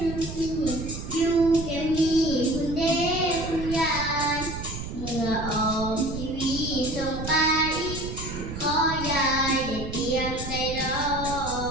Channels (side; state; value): right; noise; rumble, 7 dB below the sound